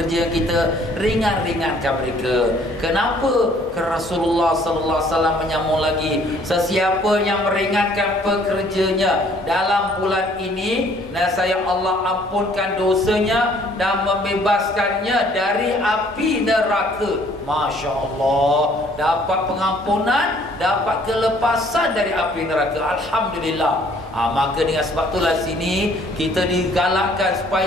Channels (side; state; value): both; normal; correlation 0.59